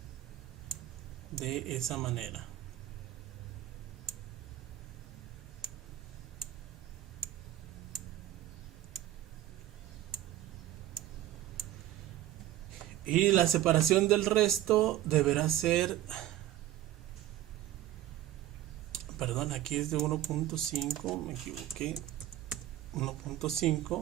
de esa manera. Y la separación del resto deberá ser, perdón, aquí es de 1.5, me equivoqué,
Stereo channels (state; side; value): quieter; left; 13.5 dB